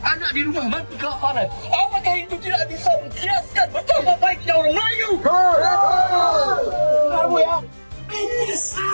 anak di rumah mati kelaparan. Apakah itu tidak bisa mengkiaskan betapa baiknya orang Melayu? Kamu ya. Ini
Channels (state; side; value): inverted; both; correlation -1.00